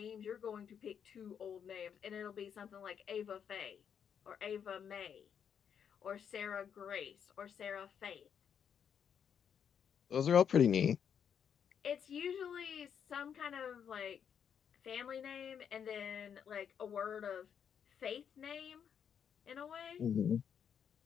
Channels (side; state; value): right; quieter; 7.9 dB